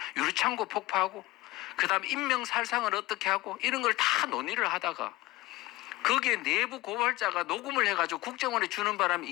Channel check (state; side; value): quieter; right; 19.8 dB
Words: 유리창고 폭파하고 그 다음 인명살상을 어떻게 하고 이런 걸 다 논의를 하다가 거기에 내부 고발자가 녹음을 해가지고 국정원에 주는 바람에